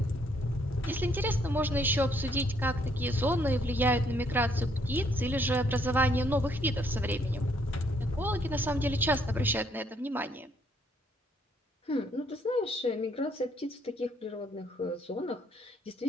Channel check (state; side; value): normal; both; correlation 0.68